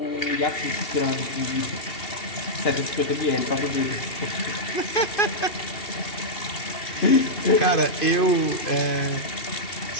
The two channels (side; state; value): right; late; 2.7 ms